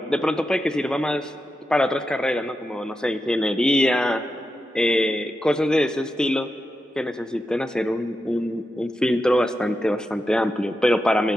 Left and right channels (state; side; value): normal; both; correlation 0.88